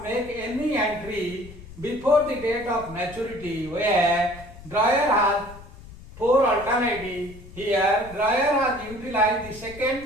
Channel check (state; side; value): noise; left; rumble, 17 dB below the sound